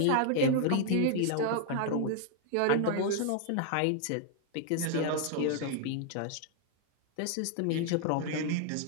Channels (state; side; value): different; both; correlation 0.00